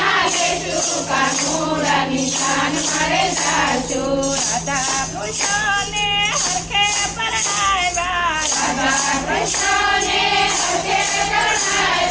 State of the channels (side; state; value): both; identical; correlation 1.00